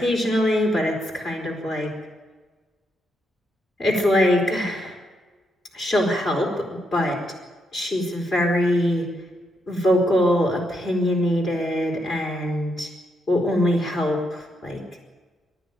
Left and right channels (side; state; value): both; normal; correlation 0.79